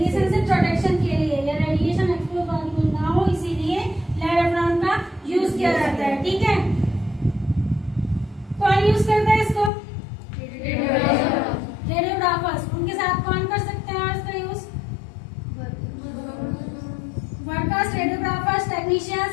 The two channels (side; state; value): right; drops out; at 9.7 s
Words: से प्रोटेक्शन के लिए, या रेडिएशन एक्सपोज ना हो, इसीलिए लेड एफ्रॉन का यूज किया जाता है, ठीक है। कौन यूज करता है इसको, रेडियोग्राफर्स, उनके साथ कौन कर सकते हैं और इसका यूज, वर्कर्स, रेडियोग्राफर्स, टेक्नीशियंस